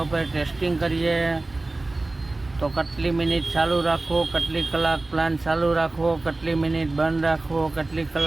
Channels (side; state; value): left; quieter; 3.0 dB